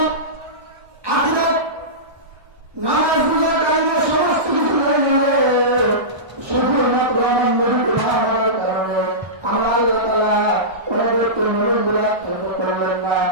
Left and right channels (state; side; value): late; left; 1.2 ms